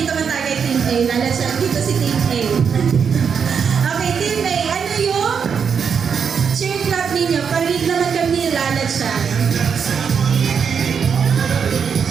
man tayo kay Team A. Lalansyan. Dito si Team A. Okay, Team A. Ano yung cheer clap ninyo? Parinig naman kami lalansyan.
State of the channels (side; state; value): left; quieter; 6.7 dB